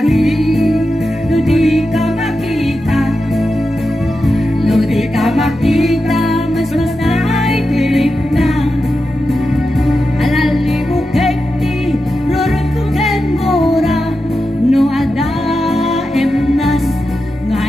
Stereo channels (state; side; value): normal; both; correlation 0.90